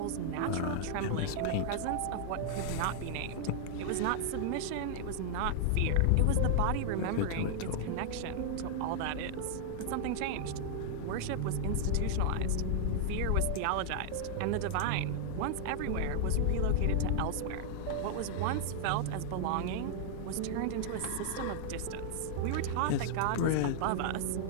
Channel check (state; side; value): different; both; correlation 0.00